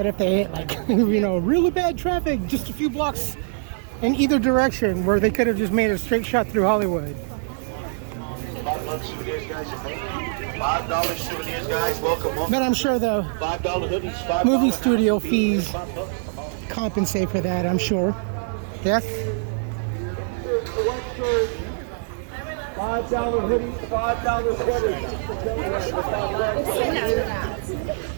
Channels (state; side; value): silent; left; digital silence